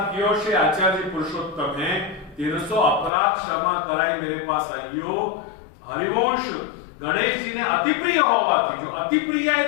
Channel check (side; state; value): right; drops out; at 3.1 s